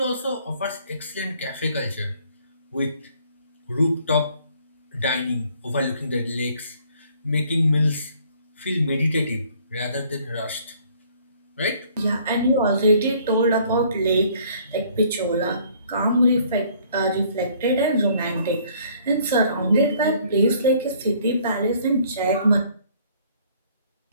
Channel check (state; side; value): inverted; both; correlation -0.59